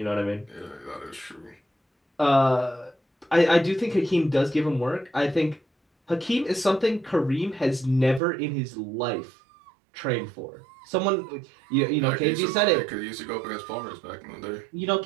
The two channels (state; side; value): drops out; left; at 8.2 s